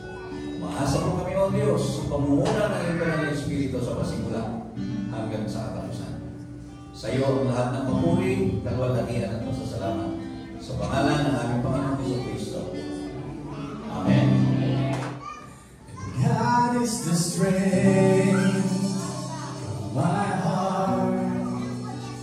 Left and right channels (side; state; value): both; identical; correlation 1.00